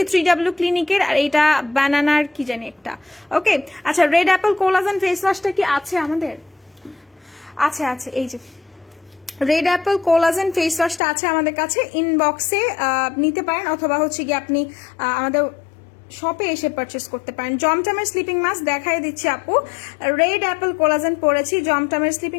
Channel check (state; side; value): drops out; right; at 11.0 s